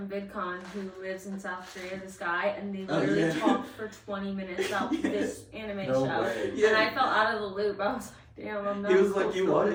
VidCon who lives in South Korea, this guy, and they literally talked for 20 minutes about this anime show. And I felt out of the loop. I was like, damn, I'm not. He was like, you want?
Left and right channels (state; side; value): identical; both; correlation 1.00